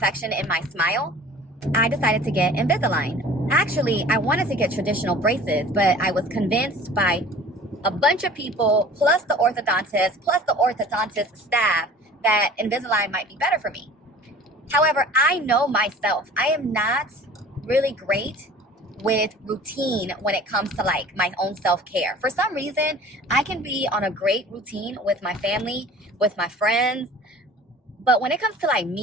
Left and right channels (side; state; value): both; normal; correlation 0.45